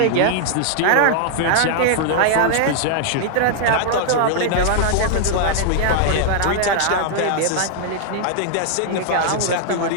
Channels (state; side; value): different; both; correlation -0.01